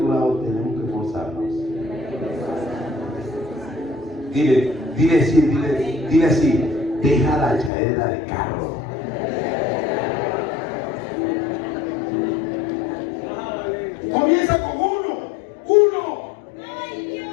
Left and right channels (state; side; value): drops out; right; at 7.7 s